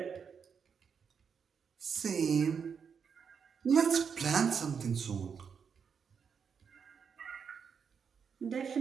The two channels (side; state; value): left; quieter; 6.6 dB